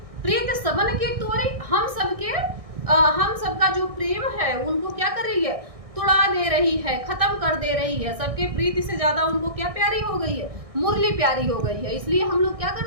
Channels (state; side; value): late; left; 1.6 ms